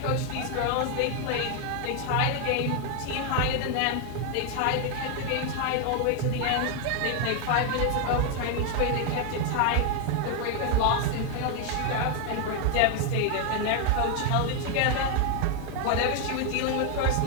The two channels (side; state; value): both; different; correlation 0.00